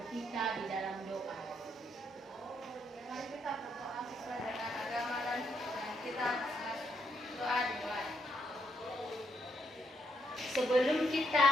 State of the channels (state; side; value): normal; both; correlation 0.76